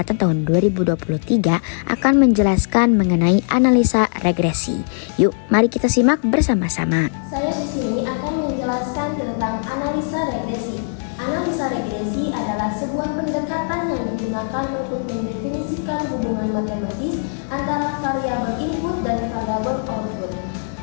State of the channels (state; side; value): silent; right; 66 dB below the other